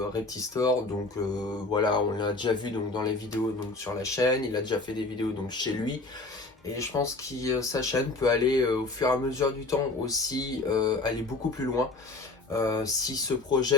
Reptistore, donc voilà, on l'a déjà vu donc dans les vidéos donc sur la chaîne, il a déjà fait des vidéos donc chez lui. Et je pense que sa chaîne peut aller au fur et à mesure du temps aussi aller beaucoup plus loin. S'il se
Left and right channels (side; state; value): right; quieter; 3.2 dB